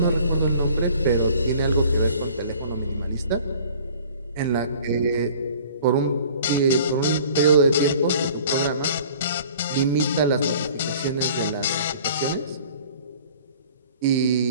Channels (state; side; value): inverted; both; correlation -0.49